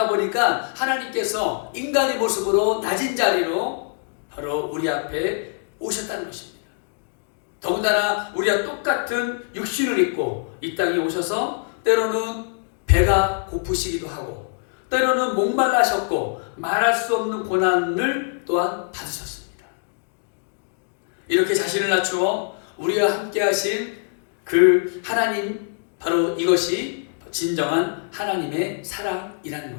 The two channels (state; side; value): silent; right; 63 dB below the other